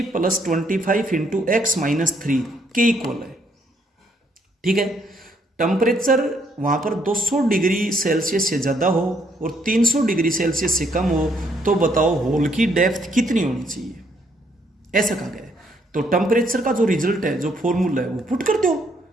+ 25 इंटू x - 3 के इक्वल है। ठीक है, टेम्परेचर वहाँ पर 200 डिग्री सेल्सियस से ज़्यादा हो और 300 डिग्री सेल्सियस से कम हो, तो बताओ होल की डेप्थ कितनी होनी चाहिए, ऐसा कहा गया है। तो टेम्परेचर का जो रिजल्ट है, जो फॉर्मूला है वो पुट कर दो।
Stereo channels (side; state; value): both; normal; correlation 0.70